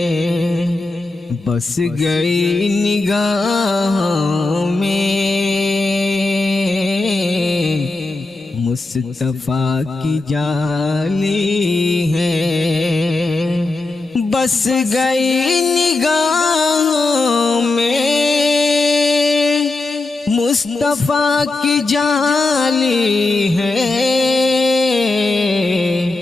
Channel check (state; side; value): quieter; right; 3.1 dB